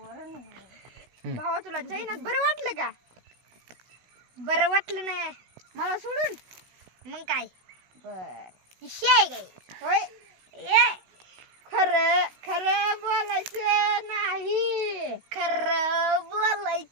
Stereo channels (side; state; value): left; late; 16 ms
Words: भाऊ तुला चैनात बरं वाटलं का? बरं वाटलं नाही मला सोडून मग काय बर शियाय काय होय. खरं खरं बोलायचं नाही. खरं